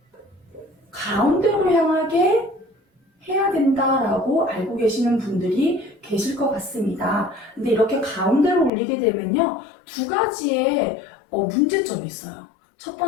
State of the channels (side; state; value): right; drops out; at 8.7 s